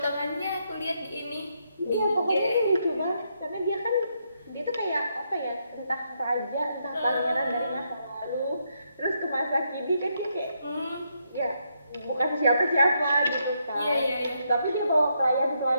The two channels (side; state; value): both; inverted; correlation -0.78